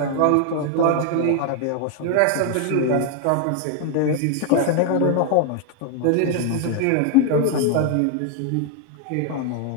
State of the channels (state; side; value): different; both; correlation 0.00